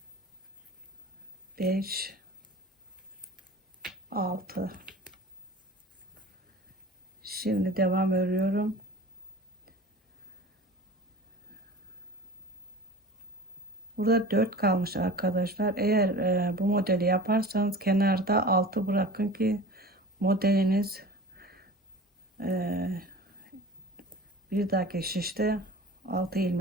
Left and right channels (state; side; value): normal; both; correlation 0.38